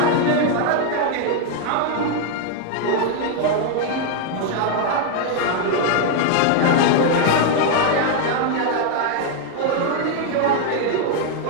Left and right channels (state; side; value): different; both; correlation 0.01